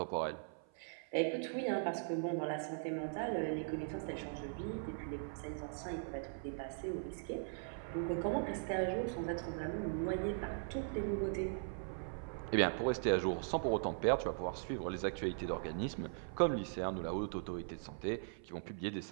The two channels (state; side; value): silent; left; 51 dB below the other